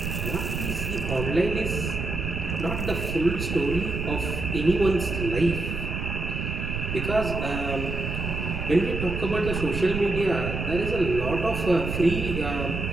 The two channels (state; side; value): noise; right; rumble, 4 dB below the sound